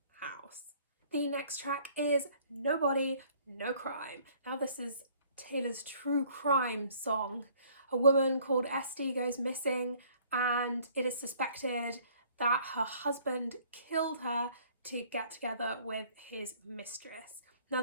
house. The next track is Nobody, No Crime. Now this is Taylor's true crime song. A woman called Esty goes missing and it is suspected that her husband killed her to get together with his mistress. Now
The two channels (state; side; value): inverted; both; correlation -0.58